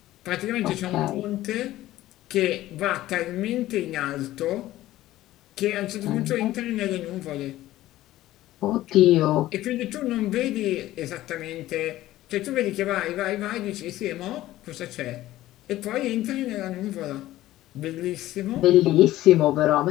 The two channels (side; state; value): right; quieter; 15.4 dB